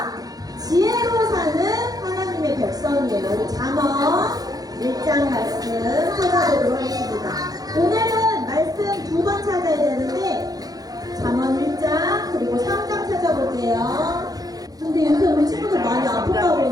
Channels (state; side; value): late; left; 0.18 ms